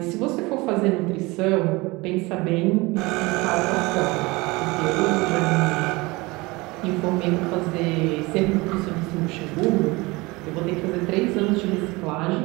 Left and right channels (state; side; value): quieter; left; 23.3 dB